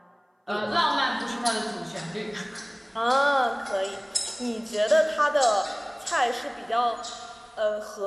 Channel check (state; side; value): identical; both; correlation 1.00